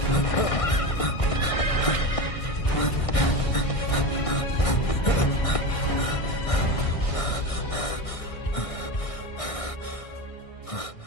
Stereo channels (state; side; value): late; right; 1.6 ms